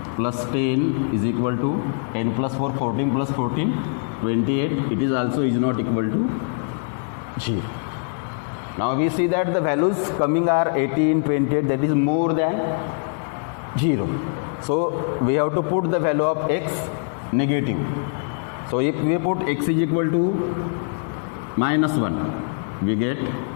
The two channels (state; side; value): silent; right; digital silence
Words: plus 10 is equal to 10 plus 4 14 plus 14 28. It is also is not equal to 0. Now we see that the values coming are 18, 28, that is more than 0. So we have to put the value of x negative. So if we put x is equal to minus 1, we get